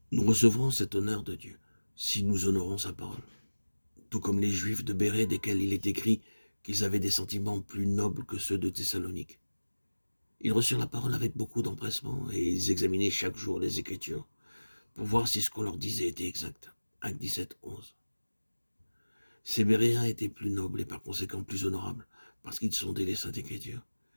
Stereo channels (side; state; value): both; inverted; correlation -1.00